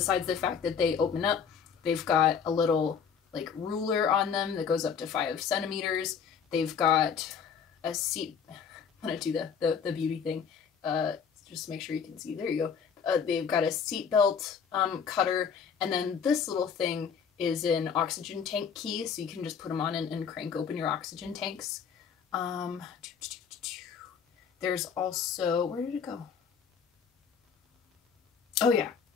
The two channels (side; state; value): right; quieter; 6.8 dB